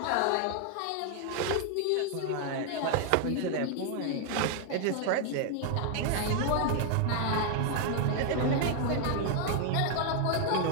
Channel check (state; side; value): different; both; correlation 0.00